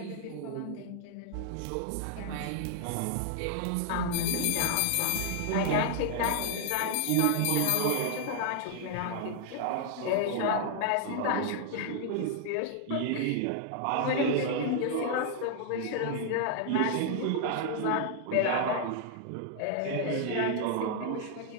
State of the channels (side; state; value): both; different; correlation 0.00